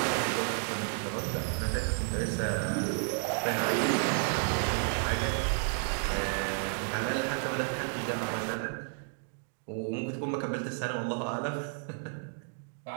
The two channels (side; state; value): left; silent; 57 dB below the other